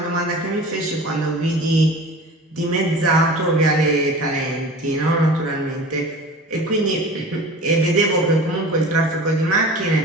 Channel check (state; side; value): normal; both; correlation 0.39